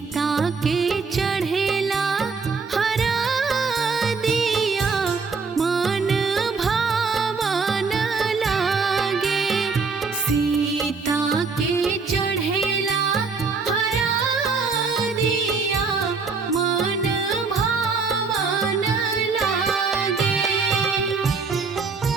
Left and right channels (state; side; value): quieter; left; 4.7 dB